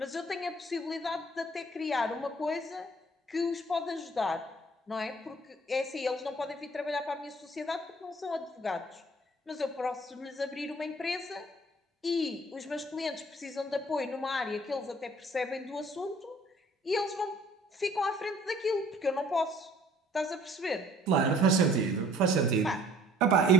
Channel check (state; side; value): normal; both; correlation 0.55